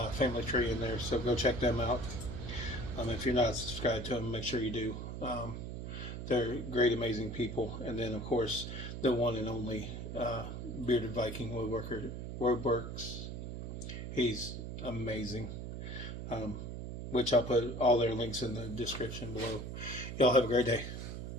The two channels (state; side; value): noise; right; hum, 7 dB below the sound